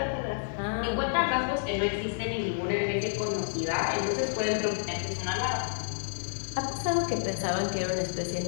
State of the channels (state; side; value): silent; right; digital silence